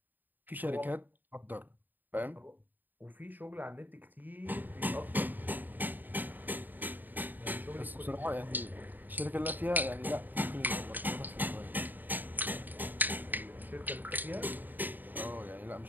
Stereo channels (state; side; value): late; left; 0.088 ms